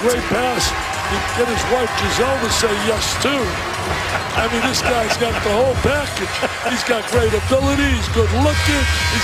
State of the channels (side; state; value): both; identical; correlation 1.00